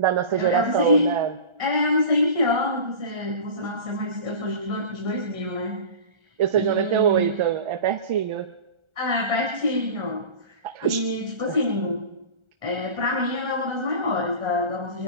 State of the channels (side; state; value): left; late; 1.4 ms